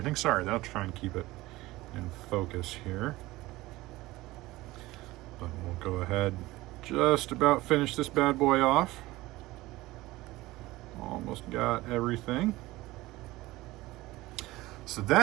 Sorry, I'll try and keep it in focus here. But we'll go ahead, just about finish this bad boy off. Almost got everything. So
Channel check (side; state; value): left; quieter; 18.9 dB